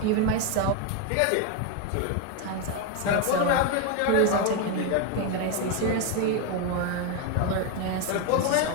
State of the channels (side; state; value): both; different; correlation 0.01